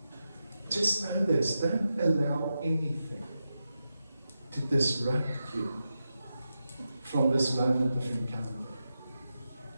know this: don't allow anything to disrupt you from this moment of encounter.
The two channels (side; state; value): both; inverted; correlation -0.88